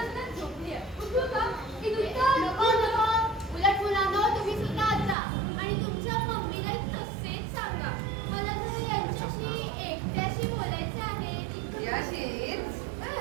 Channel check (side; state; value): left; drops out; at 5.2 s